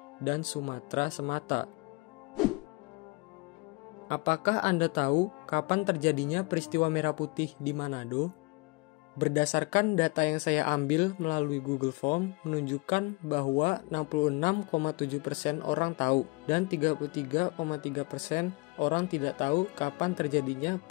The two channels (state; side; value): quieter; right; 27.3 dB